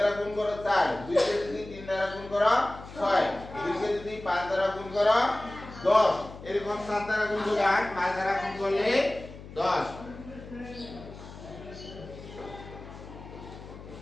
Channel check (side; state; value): left; noise; hum, 15 dB below the sound